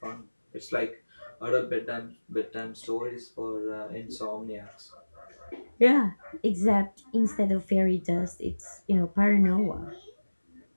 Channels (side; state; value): both; inverted; correlation -1.00